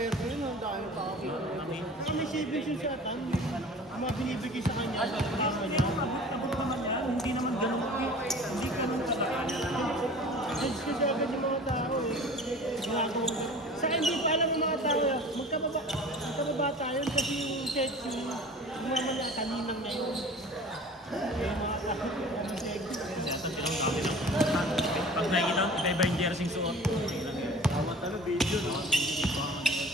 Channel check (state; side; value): normal; both; correlation 0.42